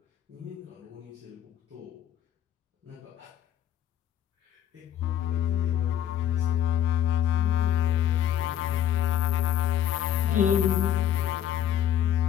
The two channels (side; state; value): right; quieter; 10.4 dB